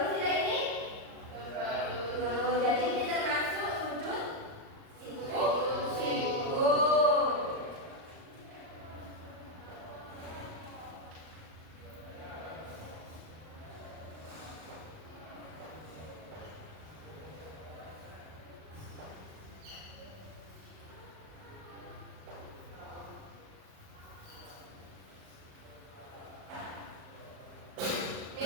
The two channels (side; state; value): left; late; 38 ms